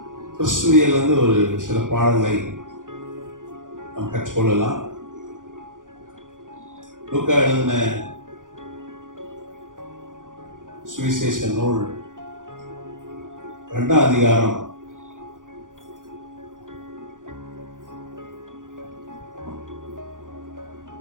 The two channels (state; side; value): late; left; 0.88 ms